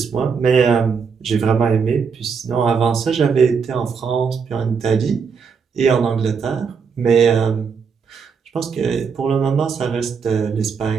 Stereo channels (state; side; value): quieter; left; 6.0 dB